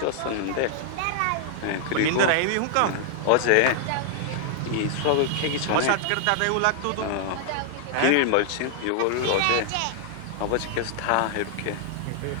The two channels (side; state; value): both; different; correlation 0.00